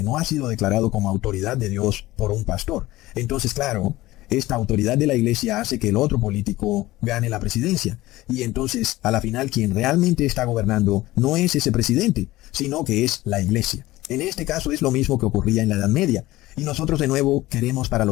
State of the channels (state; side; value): quieter; right; 17.7 dB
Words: no ha sido declarado como autoridad de Dios por un pastor. Entonces, claro, esta autoridad de la iglesia hace que el otro político gane la presidencia. Y entonces, a la final, quien realmente está gobernando no es ese presidente, sino que es la iglesia. En este caso es lo mismo que ocurría en la Edad Media. Y nosotros de nuevo queremos para